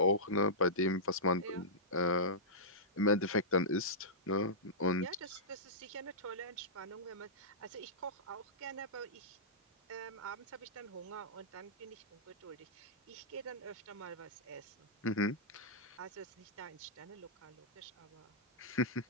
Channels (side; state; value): both; normal; correlation -0.16